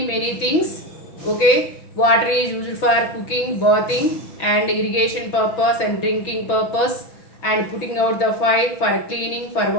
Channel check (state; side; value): late; right; 6.1 ms